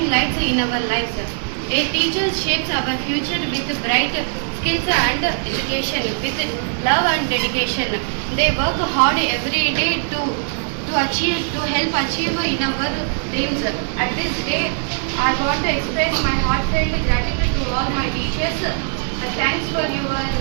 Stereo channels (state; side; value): silent; left; digital silence